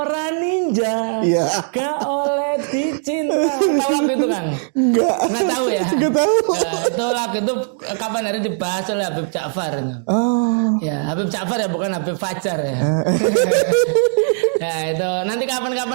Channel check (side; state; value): left; silent; digital silence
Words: ninja Iya. gak oleh dicinta. Enggak. Tahu ya? Enggak tahu. Itu lagu itu kapan hari dibahas oleh Habib Ja'far. Oh. Ya, Habib Ja'far ya, bukan Habib Fajar ya. Nah, itu nanti